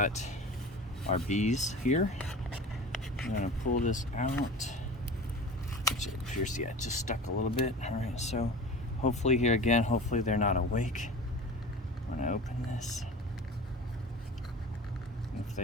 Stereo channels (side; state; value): both; normal; correlation 0.36